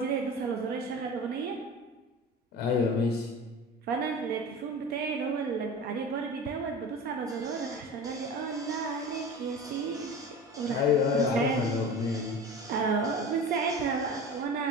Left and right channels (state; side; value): normal; both; correlation 0.33